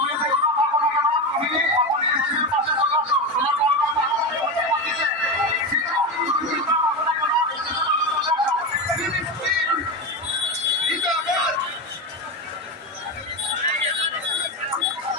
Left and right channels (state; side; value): normal; both; correlation 0.17